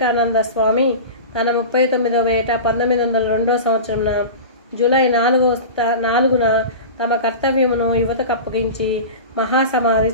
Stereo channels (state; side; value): inverted; both; correlation -0.31